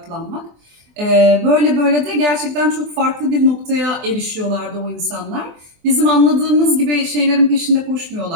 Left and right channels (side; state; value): left; late; 24 ms